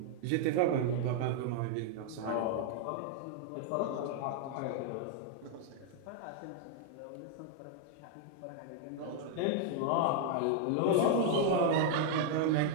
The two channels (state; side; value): different; both; correlation 0.00